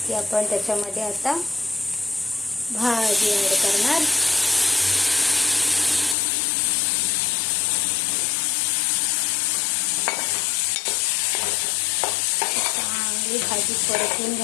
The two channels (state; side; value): drops out; right; at 6.2 s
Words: की आपण त्याच्यामध्ये आता भाजी ॲड करणार. चांगली भाजी परतून